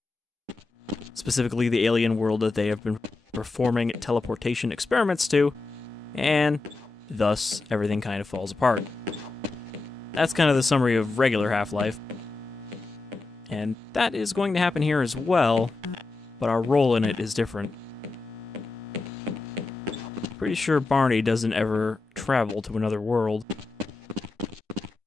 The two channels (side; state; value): right; quieter; 3.7 dB